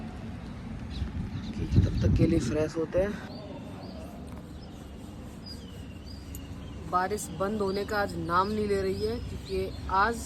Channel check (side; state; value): both; identical; correlation 1.00